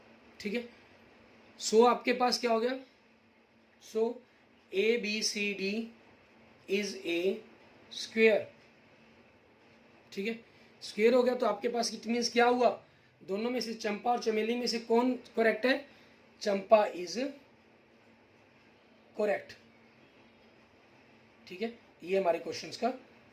ठीक है, सो आपके पास क्या हो गया, सो ABCD इज ए स्क्वेयर। ठीक है, स्क्वेयर हो गया, तो आपके पास इट मीन्स क्या हुआ, दोनों में से चंपा और चमेली में से कौन करेक्ट है, चंपा इज करेक्ट। ठीक है, ये हमारे क्वेश्चंस का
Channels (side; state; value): both; identical; correlation 1.00